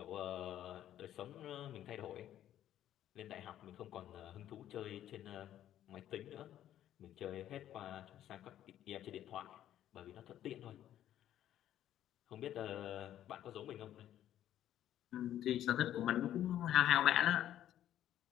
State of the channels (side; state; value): right; quieter; 11.7 dB